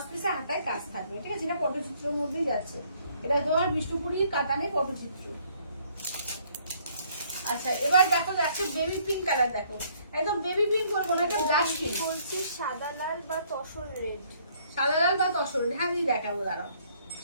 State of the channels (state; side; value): inverted; both; correlation -0.64